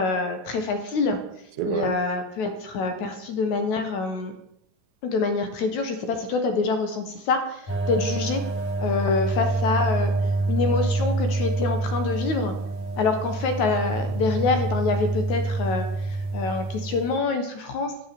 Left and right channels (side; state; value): right; late; 9.3 ms